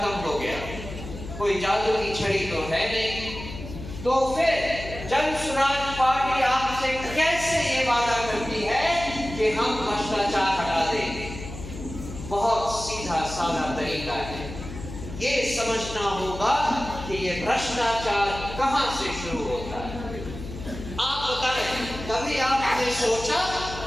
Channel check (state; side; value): noise; left; hum, 11 dB below the sound